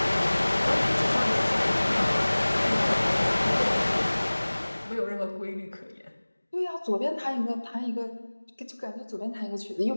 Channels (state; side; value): inverted; both; correlation -1.00